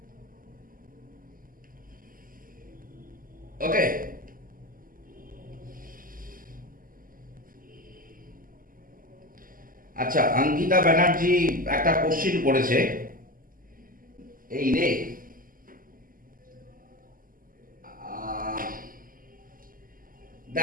Okay. আচ্ছা, অঙ্কিতা ব্যানার্জি একটা কোশ্চিন করেছে, এই রে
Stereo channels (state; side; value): late; left; 0.41 ms